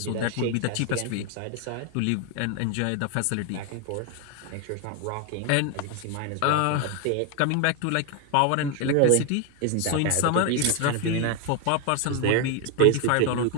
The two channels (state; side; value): different; both; correlation 0.01